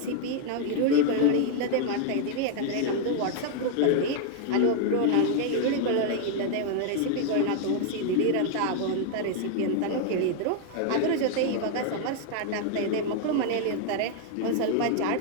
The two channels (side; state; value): both; different; correlation 0.00